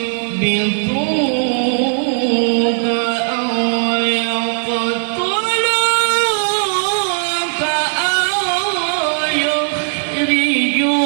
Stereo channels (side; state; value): left; silent; digital silence